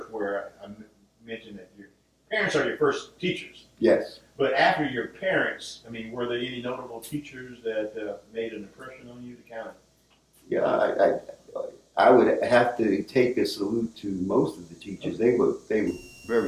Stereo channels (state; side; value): identical; both; correlation 1.00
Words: where I mentioned that your parents are your first teachers. Yes. But after your parents, I mean, were there any notable teachers that made an impression on you? To kind of. Yeah, I would have to take a salute to most of the teachers. They were very